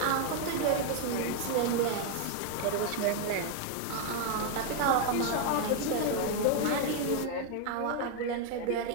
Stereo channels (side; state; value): both; different; correlation 0.00